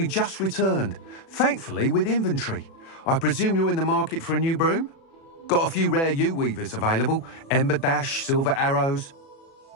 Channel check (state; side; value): late; right; 36 ms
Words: just returned, thankfully with inventory. I presume you're in the market for a new broom? Got a few rare U-weavers available. Ember Dash, Silver Arrows.